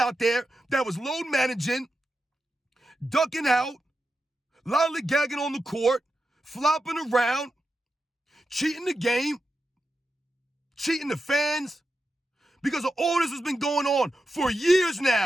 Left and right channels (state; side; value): normal; both; correlation 0.89